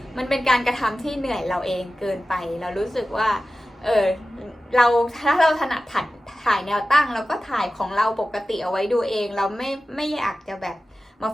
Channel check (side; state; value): both; normal; correlation 0.95